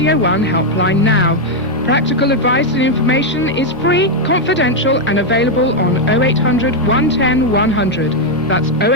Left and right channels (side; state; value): both; normal; correlation 0.01